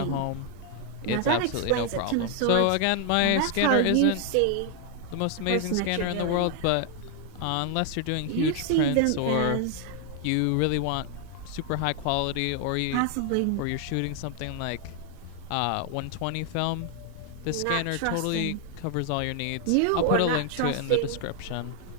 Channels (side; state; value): both; different; correlation 0.00